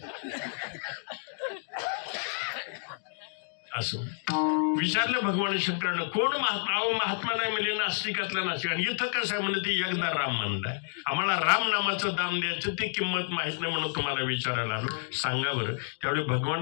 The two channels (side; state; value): right; silent; 58 dB below the other